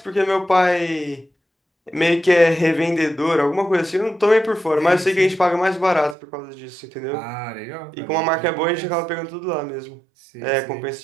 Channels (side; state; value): left; drops out; at 6.2 s